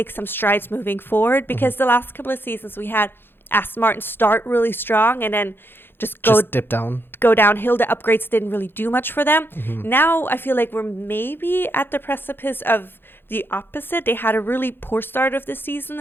some strides moving forward, because the last couple of seasons we had Aston Martin start really strong and then just dip down, go downhill. The upgrades didn't really do much for them. Now I feel like we're maybe at the precipice of the opposite. They had a really poor start of the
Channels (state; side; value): late; right; 0.10 ms